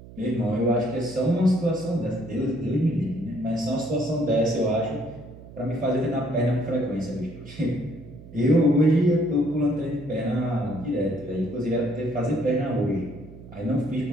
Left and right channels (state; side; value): noise; right; hum, 17 dB below the sound